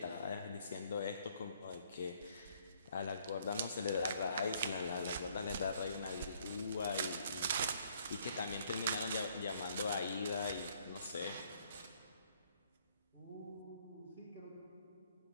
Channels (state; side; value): inverted; both; correlation -0.64